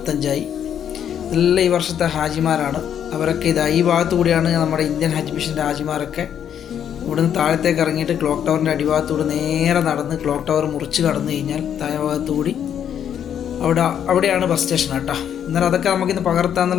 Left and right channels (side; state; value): right; quieter; 9.1 dB